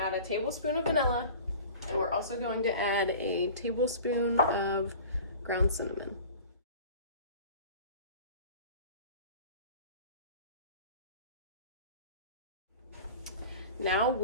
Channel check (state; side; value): inverted; both; correlation -0.40